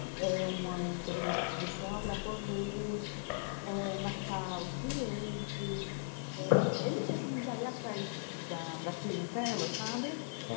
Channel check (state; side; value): silent; right; digital silence